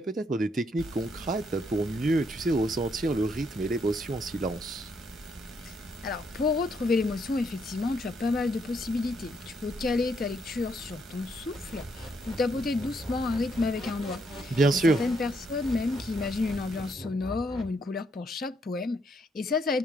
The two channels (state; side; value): normal; both; correlation 0.74